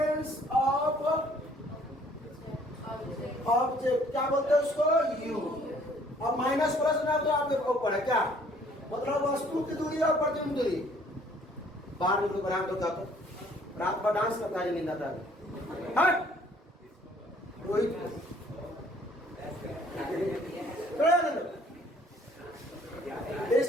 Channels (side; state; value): both; normal; correlation 0.59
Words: ऑफ ऑब्जेक्ट क्या बोलते हैं उसको? यू। अब माइनस प्लस ना तो आपके ऊपर है क्या, मतलब वस्तु वस्तु की दूरी और प्रतिबिंब दूरी। बाहर निकलो, बना दो क्या रात भर डांस करता है, नींद आता है। Rohit